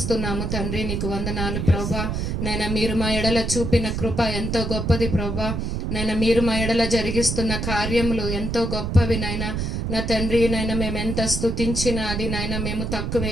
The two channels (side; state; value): right; noise; rumble, 2 dB below the sound